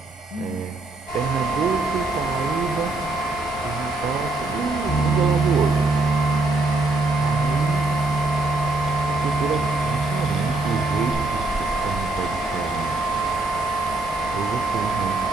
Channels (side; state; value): left; quieter; 3.1 dB